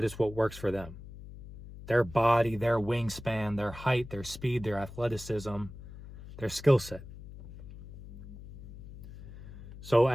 it's what works for them. Their body, their wingspan, their height, their speed, their athleticism, their skill set. So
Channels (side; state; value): left; noise; hum, 14 dB below the sound